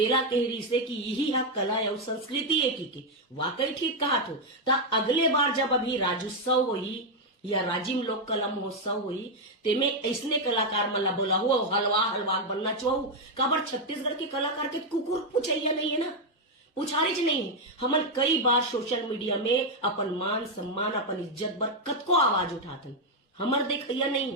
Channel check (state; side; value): normal; both; correlation 0.02